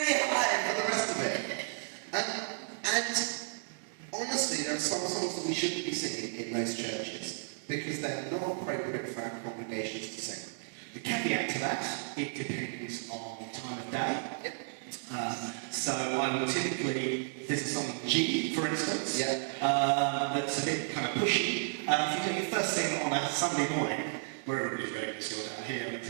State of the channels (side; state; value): left; silent; digital silence